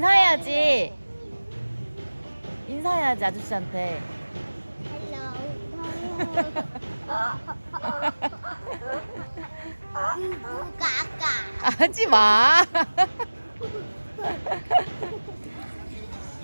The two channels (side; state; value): both; inverted; correlation -1.00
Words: 인사해야지 아저씨한테. 까까. 하지 마.